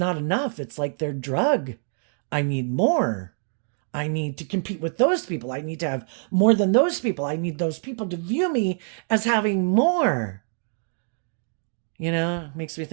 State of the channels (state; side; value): silent; left; 62 dB below the other